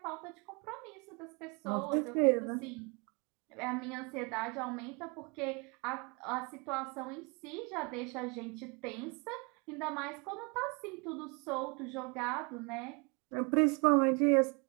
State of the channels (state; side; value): quieter; left; 31.7 dB